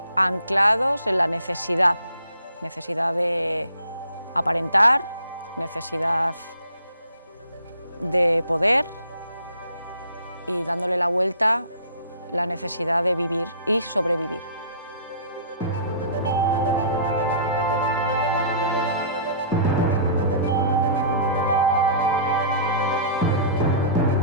anclados en la necesidad de aparentar, necesidad de poder y dándole la vuelta la necesidad de vivir y sobrevivir.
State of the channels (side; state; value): both; inverted; correlation -0.49